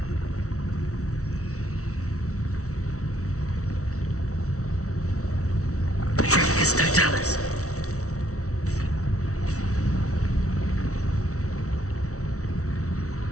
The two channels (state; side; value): late; right; 0.64 ms